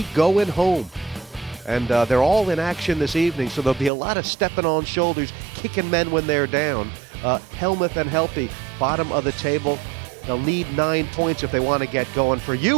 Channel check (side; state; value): left; drops out; at 3.9 s